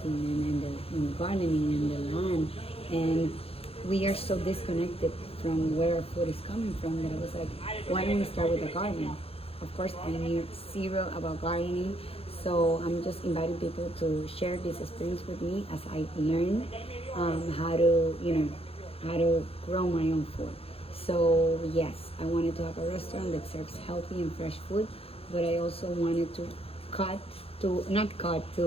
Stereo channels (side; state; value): right; late; 0.28 ms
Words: and gardening and the land. And we are so disconnected from where our food is coming from that I was like, why don't we start with the garden? Of course, I knew zero about gardening, so I'm just inviting people to share this experience with me as I learn how to, how to grow my own food. So yes, I wanted to have a restaurant that serves healthy and fresh food, but I also wanted to cut to not cut